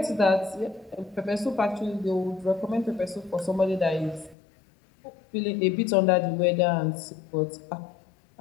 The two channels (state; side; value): drops out; right; at 4.4 s